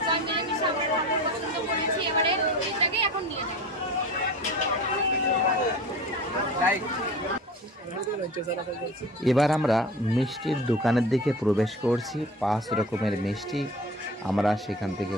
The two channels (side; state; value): both; normal; correlation 0.37